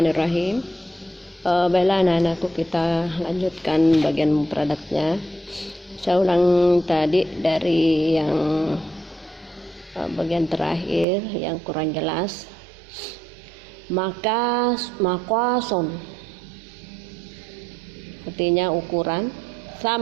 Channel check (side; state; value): left; drops out; at 11.1 s